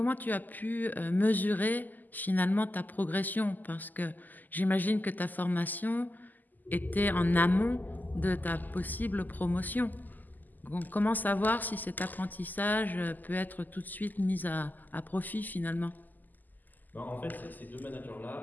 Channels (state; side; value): late; right; 0.085 ms